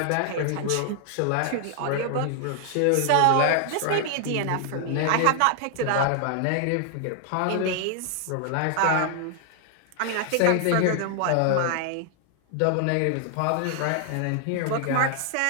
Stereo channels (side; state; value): both; different; correlation 0.00